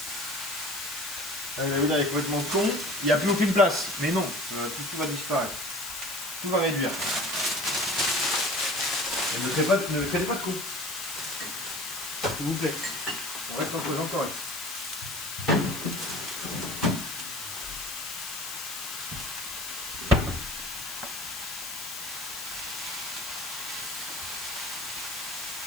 Là, il est complètement con. Il n'y a plus aucune place. Mais non, tout va disparaître. Tout va réduire. Et ne créez pas de coups. S'il vous plaît. On reste entre gens corrects.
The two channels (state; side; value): noise; left; hiss, 8 dB below the sound